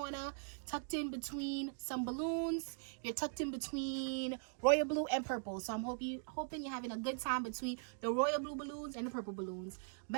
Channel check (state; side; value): silent; left; digital silence